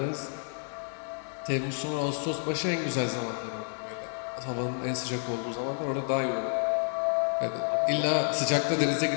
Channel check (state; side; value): silent; right; 58 dB below the other